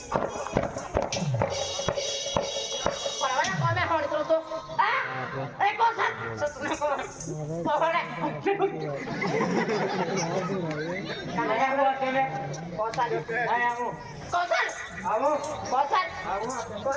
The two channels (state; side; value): identical; both; correlation 1.00